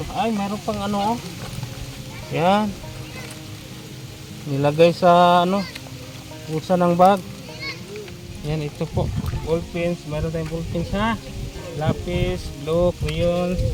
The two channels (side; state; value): both; identical; correlation 1.00